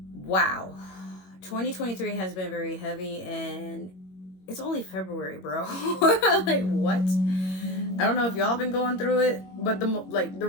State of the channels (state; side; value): late; right; 21 ms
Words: Wow, 2023 has been very heavy and it's only February, bro. Like what? I don't know if y'all been going through it, but the